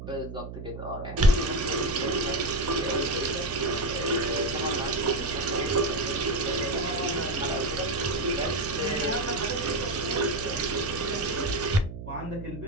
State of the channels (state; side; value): noise; right; hum, 10 dB below the sound